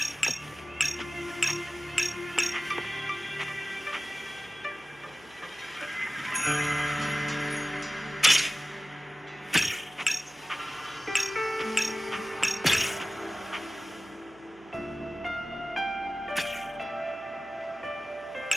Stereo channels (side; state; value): right; noise; hum, 27 dB below the sound